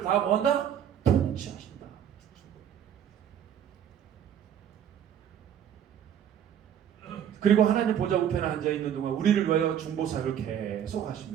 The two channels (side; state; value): left; quieter; 9.5 dB